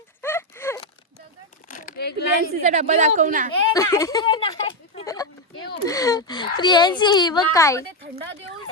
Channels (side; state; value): both; normal; correlation 0.06